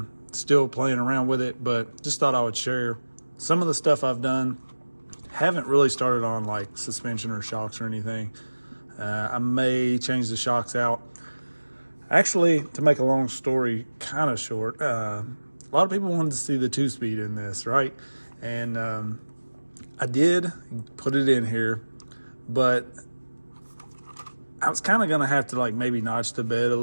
Still playing around with it, but just thought I would share some of the stuff I've done. Haven't really started on like suspension or shocks or anything. I may change the shocks out. Actually, to make a long story kind of short, a lot of people wanted to see the 2-speed in this, right? And I did put it in here, but I was kind of going to have to like maybe notch the bed a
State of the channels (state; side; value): inverted; both; correlation -1.00